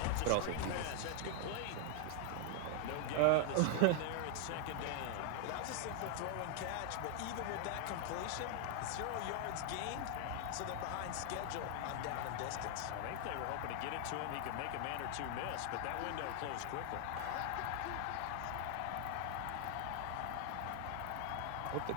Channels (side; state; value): both; different; correlation 0.00